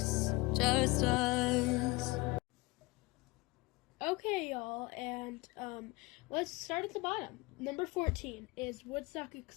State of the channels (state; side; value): quieter; right; 23.3 dB